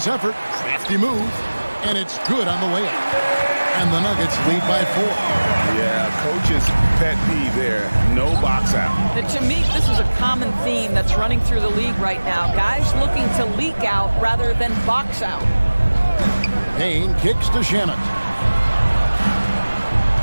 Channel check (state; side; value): inverted; both; correlation -1.00